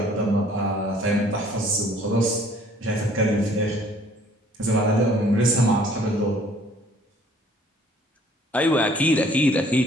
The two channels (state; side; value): normal; both; correlation 0.57